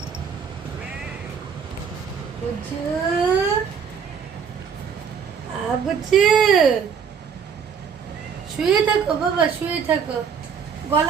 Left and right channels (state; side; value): quieter; left; 6.8 dB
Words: বুচু বুচু শুয়ে থাকো বাবা, শুয়ে থাকো।